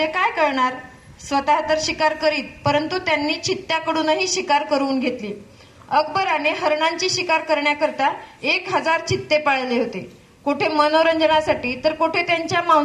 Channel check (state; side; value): identical; both; correlation 1.00